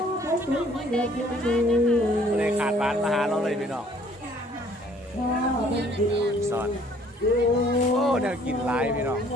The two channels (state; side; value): normal; both; correlation 0.59